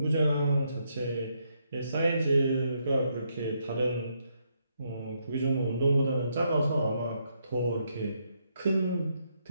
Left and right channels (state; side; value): inverted; both; correlation -0.77